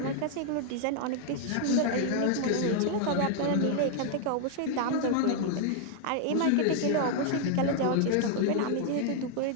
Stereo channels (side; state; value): both; different; correlation 0.00